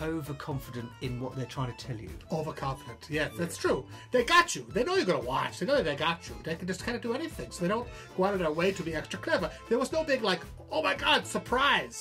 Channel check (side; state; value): both; identical; correlation 1.00